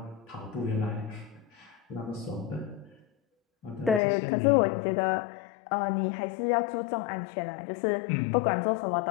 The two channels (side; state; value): right; drops out; at 4.0 s